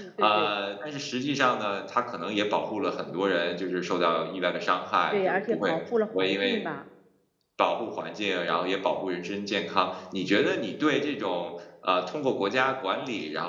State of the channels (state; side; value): identical; both; correlation 1.00